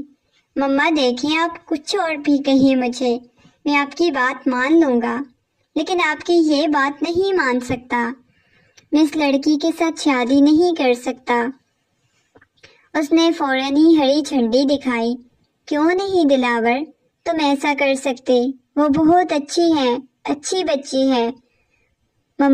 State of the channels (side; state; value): both; identical; correlation 1.00